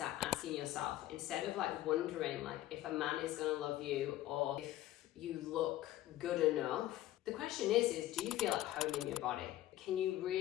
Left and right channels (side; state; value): right; quieter; 14.6 dB